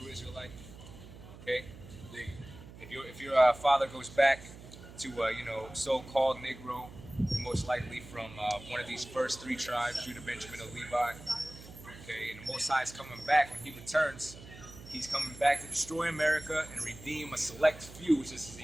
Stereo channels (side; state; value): right; noise; hum, 16 dB below the sound